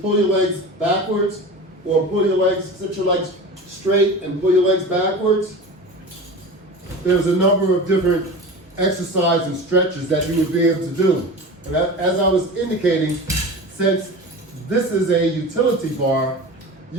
your legs backwards, or pull your legs, sit your legs straight and pull your legs backwards. There's a number of different exercise and stretches that you would be able to do. And as I was indicating, since this is a utility bar,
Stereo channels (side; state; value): both; normal; correlation 0.32